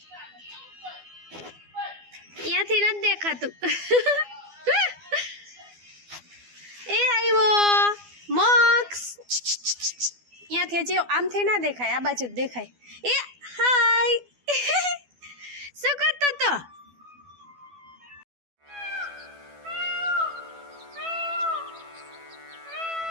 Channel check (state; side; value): late; left; 12 ms